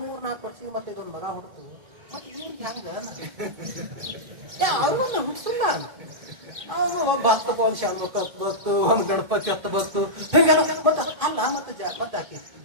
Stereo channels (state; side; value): late; left; 2.1 ms